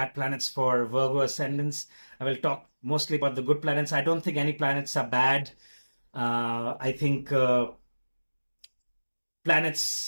planets for Virgo ascendants. I will talk mostly about the good planets. I don't think any planets are bad. I think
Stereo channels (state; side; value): inverted; both; correlation -1.00